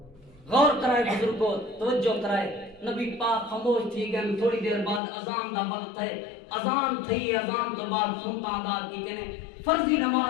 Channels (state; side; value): drops out; right; at 5.0 s